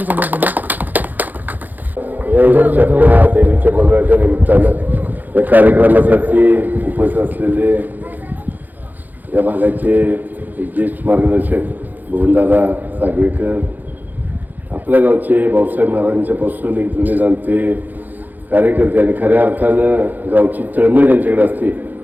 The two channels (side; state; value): left; late; 0.084 ms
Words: देवीच्या मंगळाच्या निमित्तानं या कार्यक्रमासाठी उपस्थित असलेले या भागाचे ज्येष्ठ मार्गदर्शक भुवनदादा सागवेकर, आपल्या गावचे भाऊसाहेब महाराजांच्या पासून एक जुने जाणते कार्यकर्ते आणि खऱ्या अर्थानं गावची तळमळ ज्यांच्याकडे असते